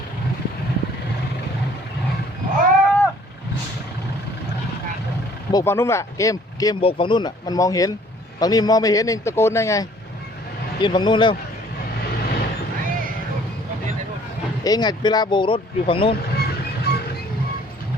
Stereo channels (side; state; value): both; normal; correlation 0.56